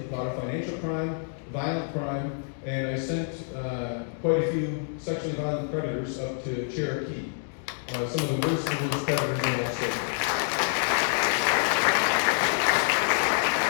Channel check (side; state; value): right; silent; 60 dB below the other